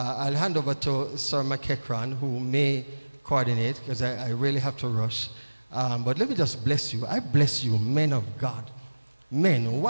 hand over to Sir McEachran, who may coordinate, because I really have to rush. But let me just bless you. I bless you, men of God, men,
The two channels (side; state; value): both; inverted; correlation -1.00